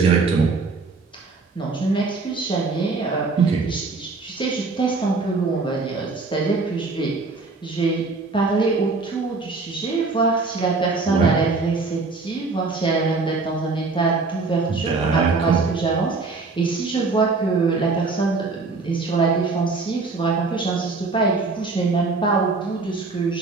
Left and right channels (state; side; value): quieter; left; 4.0 dB